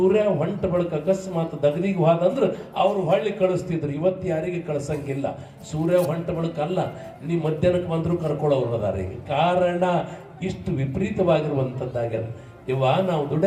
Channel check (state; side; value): identical; both; correlation 1.00